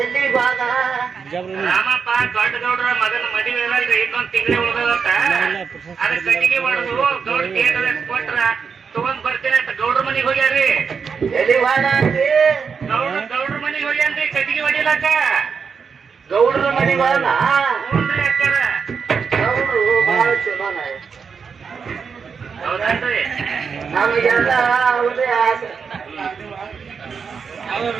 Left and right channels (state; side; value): quieter; left; 6.0 dB